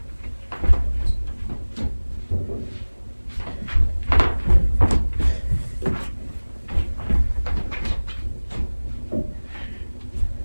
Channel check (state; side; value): inverted; both; correlation -1.00